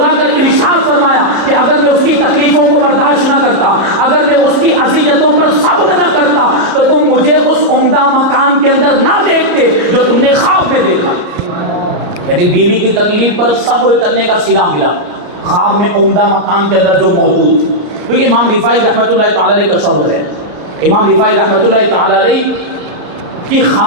کر ارشاد فرمایا کہ اگر میں اس کی تکلیفوں کو برداشت نہ کرتا، اگر میں اس کی اذیتوں پر صبر نہ کرتا تو تم مجھے اس عمدہ مکان کے اندر نہ دیکھتے جو تم نے خواب میں دیکھا. یعنی بیوی کی تکلیف پر صبر کرنے کا صلہ ملا خواب میں عمدہ مکان کے اندر جو موجود تھی. کیونکہ امام رفاعی رحمۃ اللہ تعالیٰ علیہ کا صبر ہے. امام رفاعی رحمۃ اللہ تعالیٰ علیہ کی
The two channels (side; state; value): left; late; 34 ms